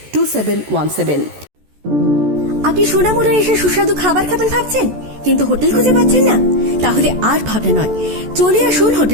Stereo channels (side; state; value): left; late; 14 ms